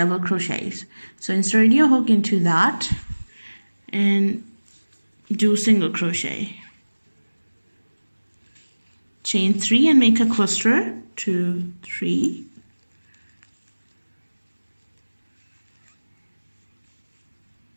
crochets. So insert your hook into that and do single crochet, chain 3 and make a cluster, 2, 3,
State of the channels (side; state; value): both; inverted; correlation -1.00